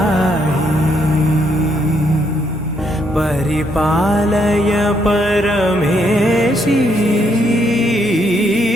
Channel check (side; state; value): both; normal; correlation 0.74